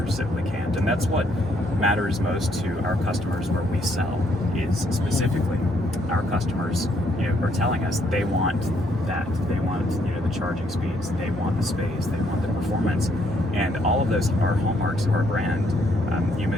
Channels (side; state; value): both; normal; correlation 0.70